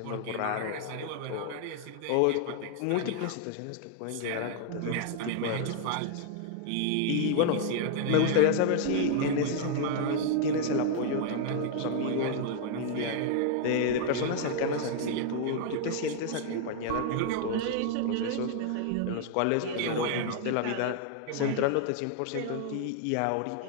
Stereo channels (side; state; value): both; different; correlation 0.00